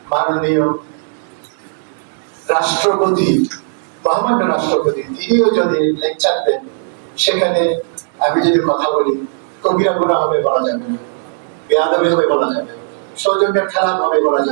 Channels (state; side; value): silent; left; digital silence